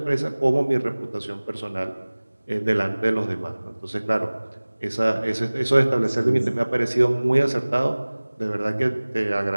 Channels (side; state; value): both; inverted; correlation -1.00